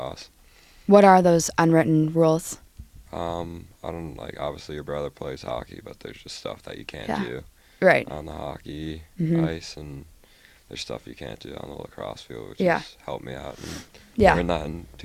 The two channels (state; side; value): identical; both; correlation 1.00